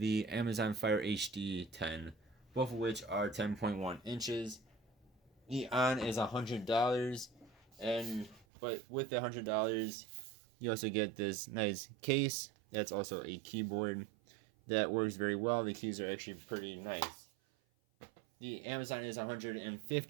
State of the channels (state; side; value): drops out; left; at 8.5 s